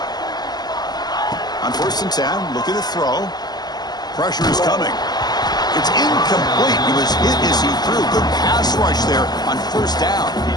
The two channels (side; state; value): right; late; 0.20 ms